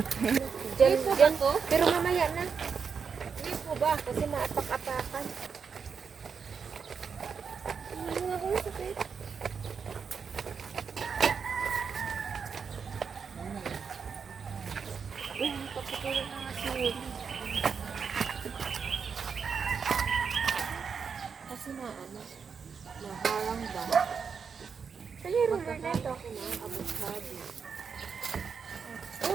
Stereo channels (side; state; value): left; quieter; 6.1 dB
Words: Diyan, diyan. Pero mamaya na. Hindi po ba? Kasi maapak-apakan. Ano nga ko yung sakit? Kasi na ano, naharang ba? Saan yung ruler na ito?